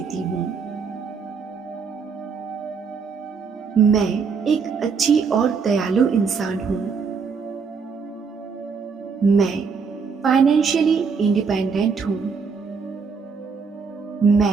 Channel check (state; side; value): quieter; left; 5.5 dB